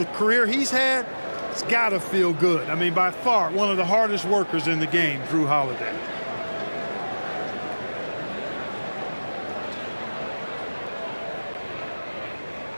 career he's had. It's got to feel good. I mean, by far, one of the hardest workers in the game, Drew Holiday.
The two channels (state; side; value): inverted; both; correlation -1.00